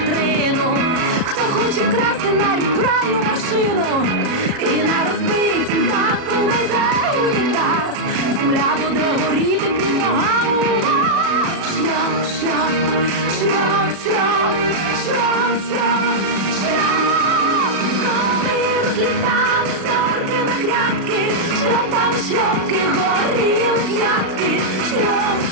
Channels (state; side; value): late; left; 37 ms